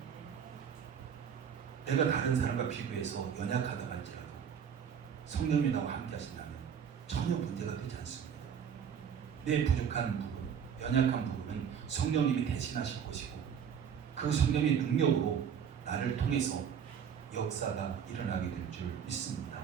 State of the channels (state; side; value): quieter; left; 7.8 dB